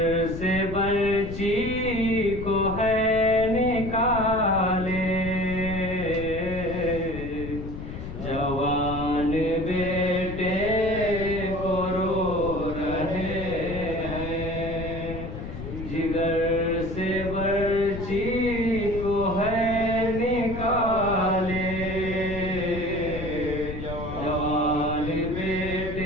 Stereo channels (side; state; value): left; noise; rumble, 8 dB below the sound